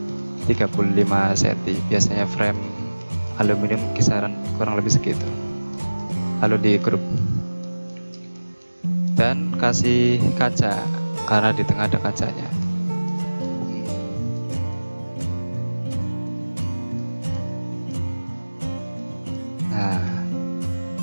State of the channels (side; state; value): both; inverted; correlation -1.00